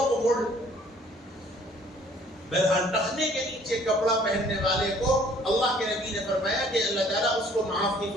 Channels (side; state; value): both; normal; correlation 0.57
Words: کو موڑ۔ بہرحال ٹخنے کے نیچے کپڑا پہننے والے کو اللہ کے نبی نے فرمایا کہ اللہ تعالیٰ اس کو معاف نہیں